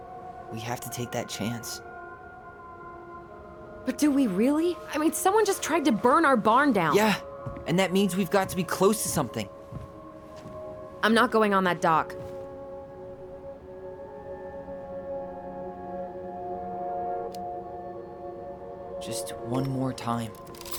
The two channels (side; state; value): both; identical; correlation 1.00